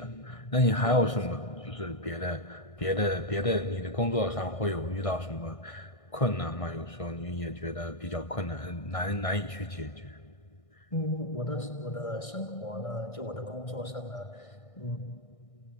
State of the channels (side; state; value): right; late; 1.6 ms